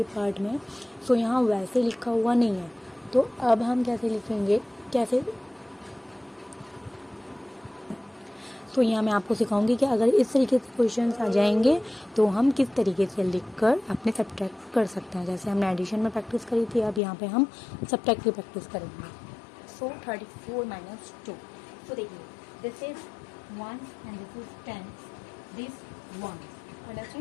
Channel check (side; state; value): right; drops out; at 17.0 s